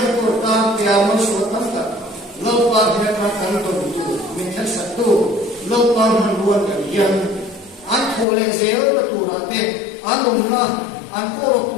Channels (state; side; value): drops out; right; at 8.2 s